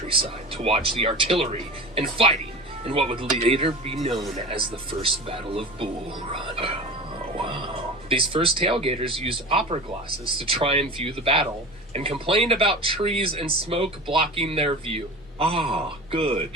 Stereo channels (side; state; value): both; normal; correlation 0.32